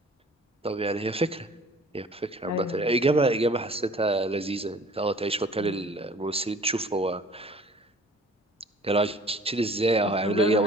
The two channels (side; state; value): both; normal; correlation 0.51